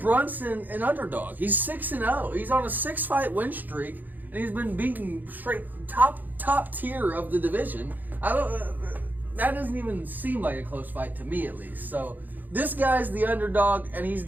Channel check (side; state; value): left; late; 0.085 ms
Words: Brunson an underdog? He's 6-0. He's on a 6-fight win streak, and he's been beaten straight top tier of the division. I don't. That doesn't even seem like a close fight to me, at least. So this guy's the underdog, and